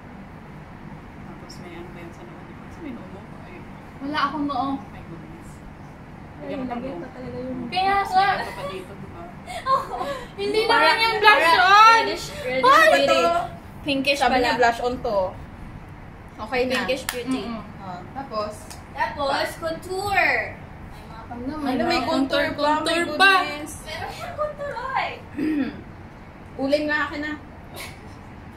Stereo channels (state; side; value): identical; both; correlation 1.00